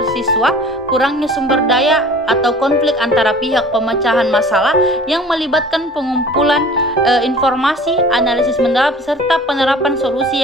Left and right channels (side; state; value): both; normal; correlation 0.45